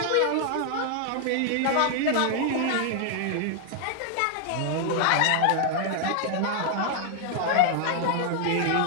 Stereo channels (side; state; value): both; different; correlation 0.00